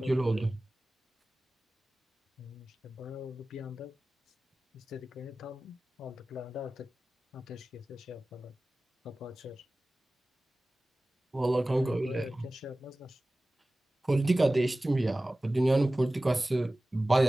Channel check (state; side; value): normal; both; correlation 0.97